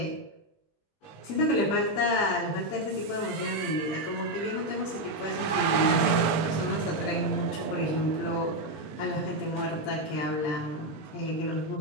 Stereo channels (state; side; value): late; right; 20 ms